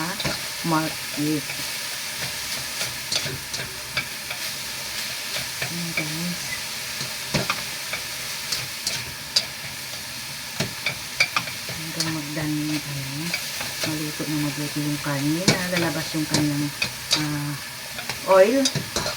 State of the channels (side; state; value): both; identical; correlation 1.00